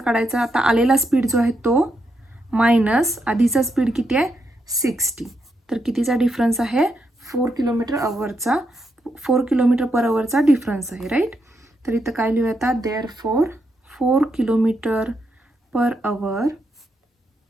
आता आलेला स्पीड जो आहे तो मायनस आधीचा स्पीड किती आहे 60, तर कितीचा डिफरन्स आहे 4 km/hचा, 4 km/hचा डिफरन्स आहे. राईट, तर इथं काय लिहूया आता, therefore 4 km/h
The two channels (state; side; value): normal; both; correlation 0.81